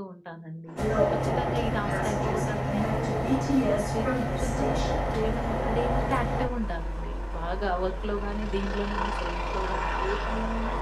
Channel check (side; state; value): both; identical; correlation 1.00